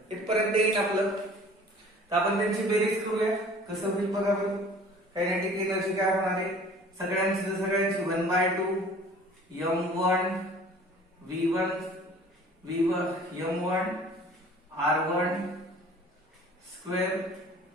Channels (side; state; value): both; normal; correlation 0.49